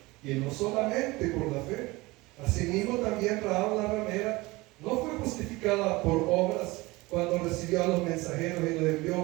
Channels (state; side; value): quieter; left; 21.8 dB